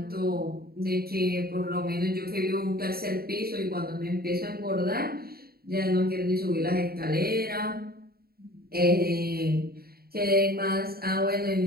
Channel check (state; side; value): late; left; 0.45 ms